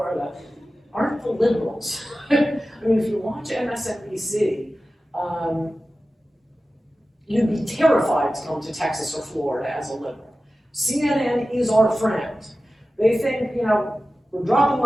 aren't the liberals. I mean, if you watch MSNBC, you'd be terrified to come to Texas or Florida as a liberal. CNN is our friend. They think, you know, we're dropping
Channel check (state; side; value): normal; both; correlation 0.94